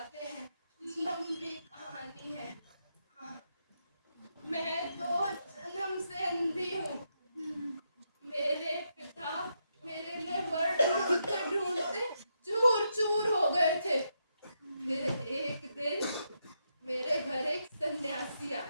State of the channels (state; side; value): inverted; both; correlation -0.81